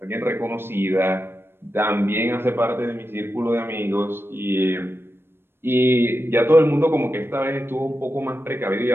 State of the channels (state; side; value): late; left; 0.11 ms